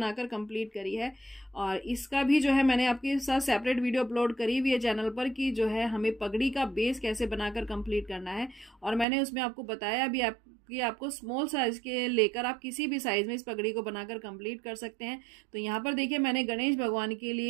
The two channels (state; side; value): drops out; left; at 9.1 s